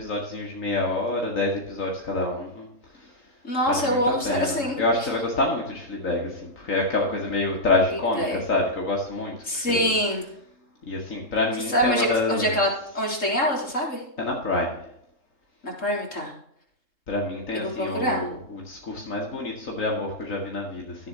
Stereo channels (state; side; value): late; right; 3.7 ms